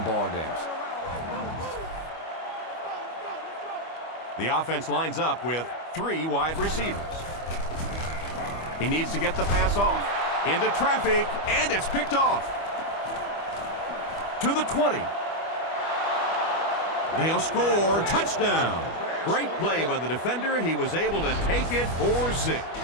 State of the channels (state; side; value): late; right; 25 ms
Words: ball games. The offense lines up with 3 wide receivers. He needs to get the pass off. Into traffic, and it's picked off. To the 20. They'll score. Touchdown. Great play by the defender. He was able to take it for 6.